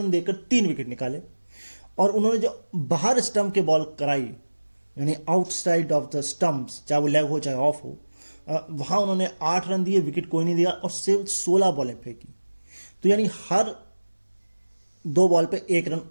देकर 3 विकेट निकाले। और उन्होंने जो बाहर स्टंप के बॉल कराई, यानी आउटसाइड ऑफ द स्टंप्स, चाहे वो लेग हो चाहे ऑफ हो, वहां उन्होंने 8 रन दिए, विकेट कोई नहीं दिया, और सिर्फ 16 बॉलें फेंकी। तो यानी हर 2 बॉल पे 1 रन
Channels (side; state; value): both; inverted; correlation -1.00